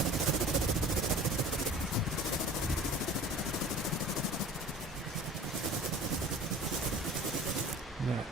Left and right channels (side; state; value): both; normal; correlation 0.43